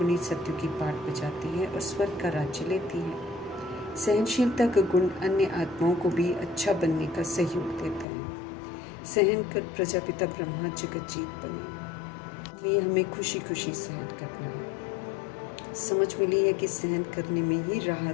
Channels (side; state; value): right; drops out; at 8.1 s